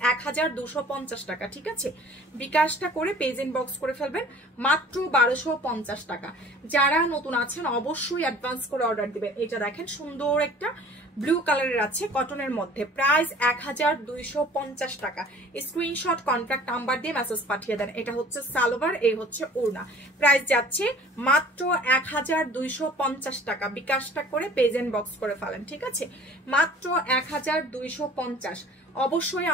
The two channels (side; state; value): both; normal; correlation 0.48